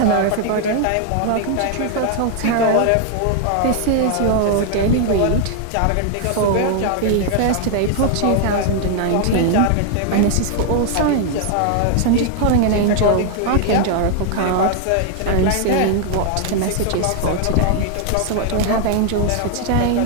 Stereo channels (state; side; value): different; both; correlation 0.00